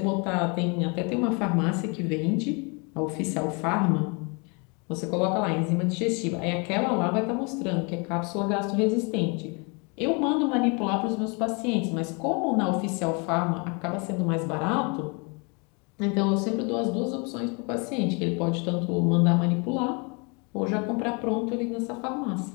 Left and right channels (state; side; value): quieter; right; 32.3 dB